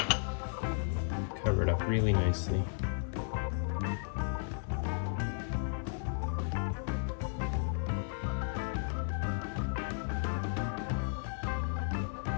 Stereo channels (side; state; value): right; silent; 55 dB below the other